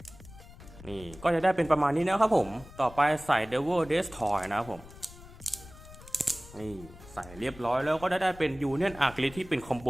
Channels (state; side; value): noise; left; rumble, 18 dB below the sound